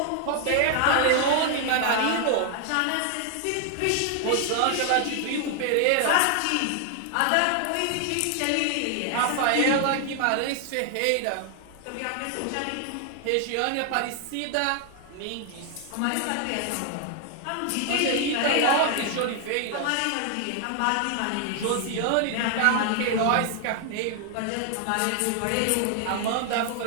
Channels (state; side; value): different; both; correlation 0.00